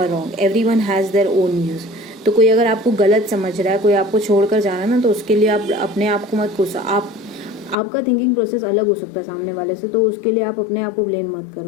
wrong, everyone has their own views. तो कोई अगर आपको गलत समझ रहा है, कोई आपको छोड़कर जा रहा है ना, तो उसके लिए आप अपने आप को मत कोसो। आपका थिंकिंग प्रोसेस अलग हो सकता है सामने वाले से, तो उसके लिए आप अपने आप को ब्लेम मत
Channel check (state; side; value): drops out; right; at 7.8 s